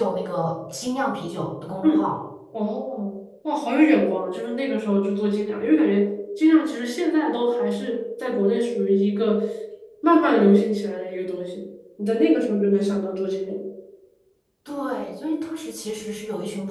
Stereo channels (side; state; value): both; identical; correlation 1.00